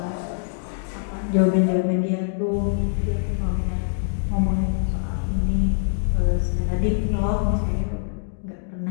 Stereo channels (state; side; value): silent; right; digital silence